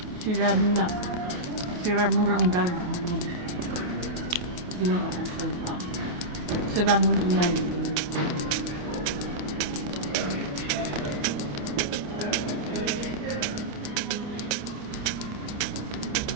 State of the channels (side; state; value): left; late; 28 ms